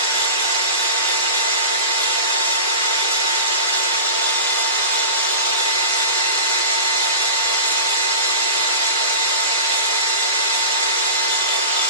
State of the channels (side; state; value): both; inverted; correlation -0.31